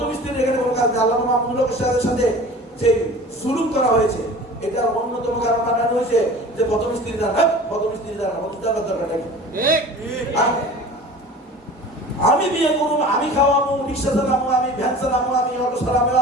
স্ত্রীর এখানে কোনো কাজ নেই। আল্লাহ মাহমুদুল সাথে যে সুলুক করা হয়েছে, এটার অন্যতম কারণ বানানো হয়েছে যে প্রথম স্ত্রী দ্বারা, প্রথম স্ত্রী দ্বারা প্রথম দ্বারা দরকার নাকি? আমি বিয়ে করবো, আমি খাওয়াবো, রিক্সা চালাবো, আমি ভ্যান চালাবো, আমি অটো চালাবো,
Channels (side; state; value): both; normal; correlation 0.41